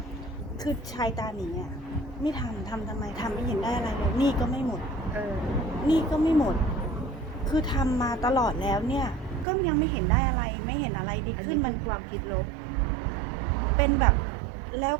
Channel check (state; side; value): drops out; left; at 9.5 s